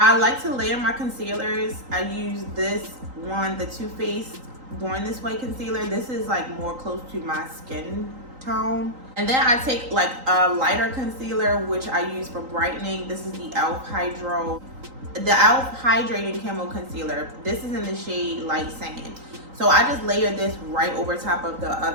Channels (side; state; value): left; late; 3.8 ms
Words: like to layer my concealers. I use this one, the Too Faced Born This Way concealer. This is like more close to my skin tone. And then I take like a lighter concealer, which I use for brightening. This is the e.l.f. Hydrating Camo Concealer. This is in the shade Light Sand. So I just layer this right over top of the